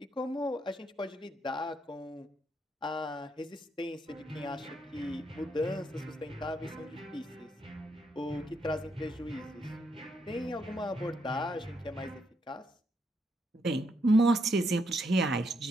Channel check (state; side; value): normal; both; correlation 0.77